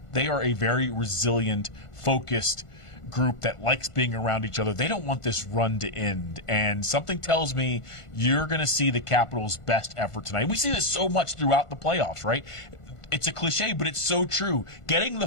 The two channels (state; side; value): late; right; 1.5 ms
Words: they are a very resilient, focused group that likes being around each other. They don't want this run to end, and something tells me you're going to see the Capitals' best effort tonight. We see this so much throughout the playoffs, right? It's a cliche, but it's so true. Getting the